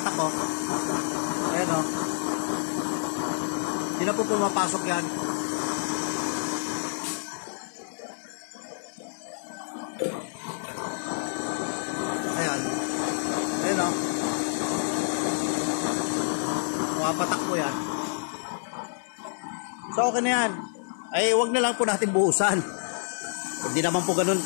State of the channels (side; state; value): right; silent; 59 dB below the other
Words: oh. Ayan, oh. Hindi na po pumapasok yan. Ayan. Ayan, oh. Pumapatak po yan. So, okay na yan. Ay, wag na lang po natin buhusan. Hindi naman po ganun